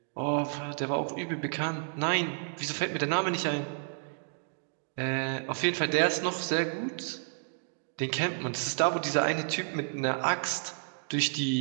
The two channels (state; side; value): silent; left; digital silence